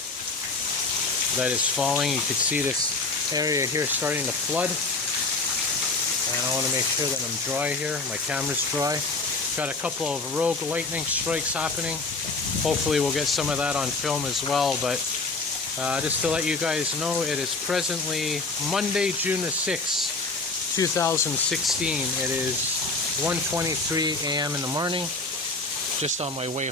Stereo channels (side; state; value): right; quieter; 3.7 dB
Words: that is falling. You can see this area here starting to flood. And I want to make sure that I'm dry here. My camera's dry. Got a couple of rogue lightning strikes happening. Hopefully we'll get some of that on film as well. But just to let you guys know, it is presently Monday, June the 6th, 2016. It is 1:23 a.m. in the morning. Just on my way